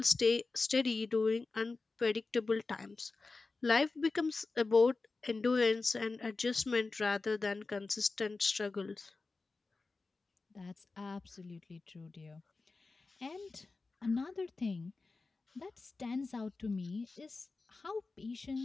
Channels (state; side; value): quieter; right; 3.8 dB